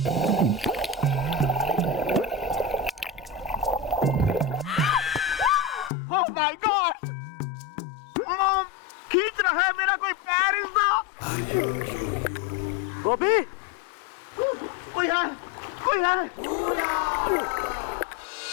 Oh my God, mom खींच रहा है मेरा कोई पैर। गोपी, कोई है, कोई है।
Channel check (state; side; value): drops out; right; at 5.9 s